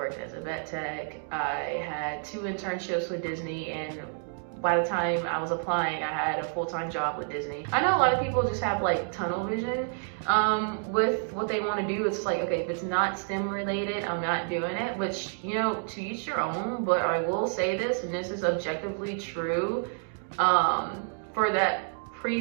as a vet tech. I had 2 internships with Disney, and by the time I was applying, I had a full-time job with Disney. I know a lot of people just have like tunnel vision with what they want to do. It's like, okay, if it's not STEM related, I'm not doing it, which, you know, to each your own, but I will say this, and this is objectively true, for that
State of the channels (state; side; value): silent; left; 58 dB below the other